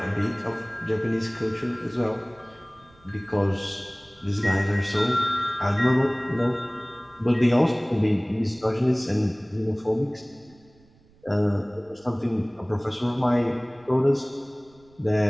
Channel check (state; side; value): noise; right; rumble, 29 dB below the sound